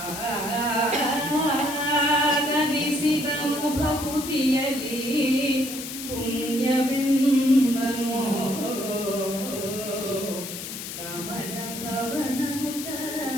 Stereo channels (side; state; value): left; noise; hiss, 8 dB below the sound